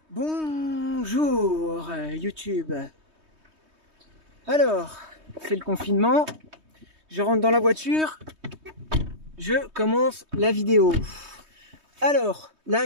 Bonjour YouTube. Alors, c'est le confinement. Je rentre dans la voiture. Je commence la vidéo. Alors,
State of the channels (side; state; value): left; late; 3.2 ms